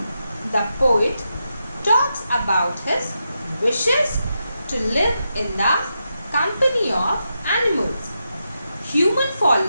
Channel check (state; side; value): inverted; both; correlation -0.86